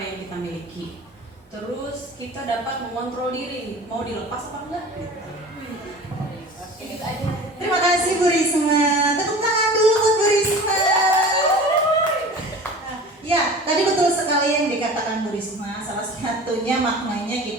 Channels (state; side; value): normal; both; correlation 0.39